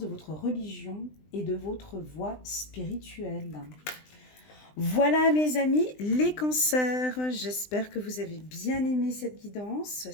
votre religion et de votre voie spirituelle. Voilà mes amis, les cancers, j'espère que vous avez bien aimé cette guidance.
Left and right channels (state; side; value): late; right; 20 ms